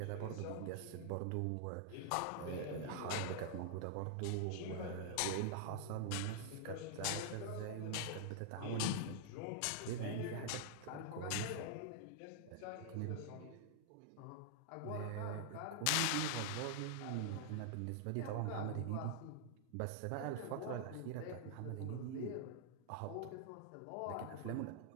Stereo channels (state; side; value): different; both; correlation -0.01